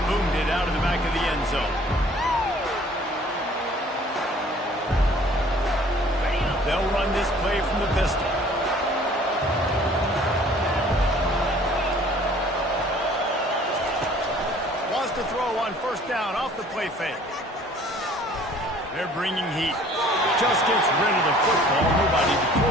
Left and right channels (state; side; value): normal; both; correlation 0.53